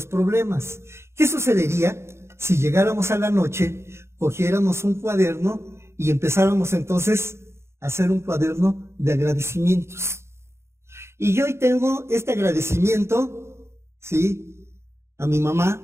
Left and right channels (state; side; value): late; left; 0.13 ms